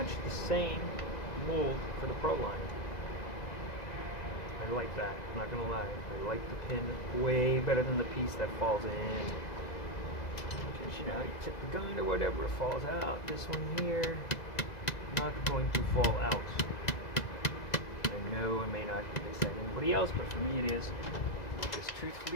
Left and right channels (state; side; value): late; right; 2.0 ms